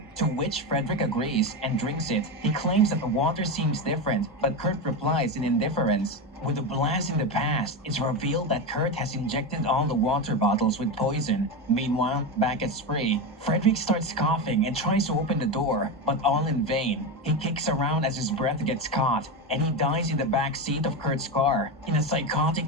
to which Frederick agrees and drinks it. He claims that the water seems different, but Kurt replies in indifference. With a blast in the past, it's revealed that Kurt has injected all the water bottles with poison. Meanwhile, back at Spree, Frederick starts coughing and tries to open the door, but all in vain. He kicks around as his breath gets caught, and he dies in the back seat of Kurt's car. In a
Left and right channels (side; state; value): both; normal; correlation 0.16